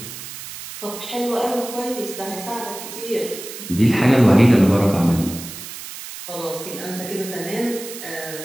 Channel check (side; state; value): right; noise; hiss, 11 dB below the sound